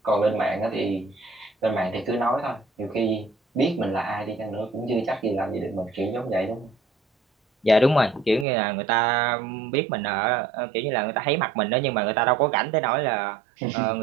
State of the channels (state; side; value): drops out; left; at 8.5 s